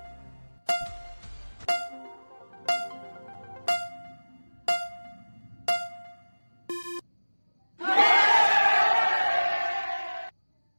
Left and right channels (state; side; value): inverted; both; correlation -1.00